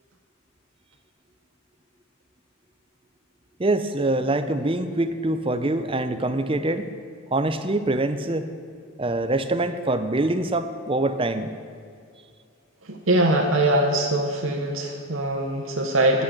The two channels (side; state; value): both; normal; correlation 0.26